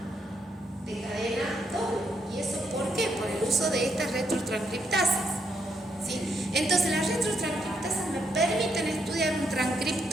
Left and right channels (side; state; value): both; normal; correlation 0.77